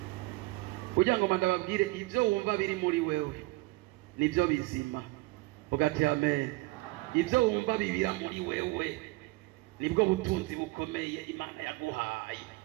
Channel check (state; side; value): quieter; left; 21.9 dB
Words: Kugira ngo mandababwire ibyo wumva biri muri wewe nibyo bizima. Vuga ati amen. Ibyo wumva bibira muri wewe nibwo butunzi bukomeye Imana yaguhaye.